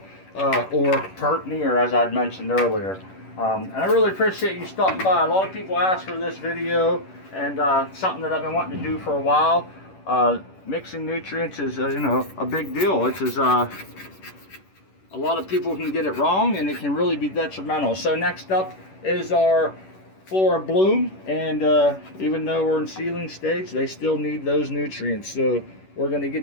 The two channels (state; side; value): late; right; 11 ms